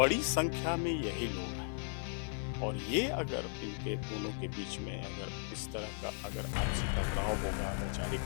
संख्या में यही लोग हैं, और ये अगर इनके दोनों के बीच में अगर इस तरह का अगर आपसी टकराव होगा, वैचारिक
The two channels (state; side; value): silent; right; 53 dB below the other